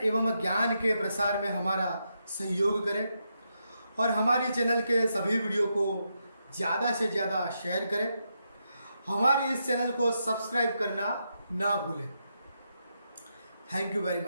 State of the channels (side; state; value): both; inverted; correlation -0.83